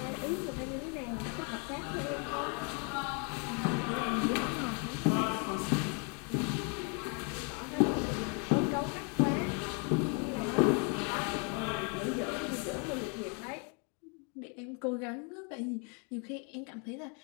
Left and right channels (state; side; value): quieter; right; 36.8 dB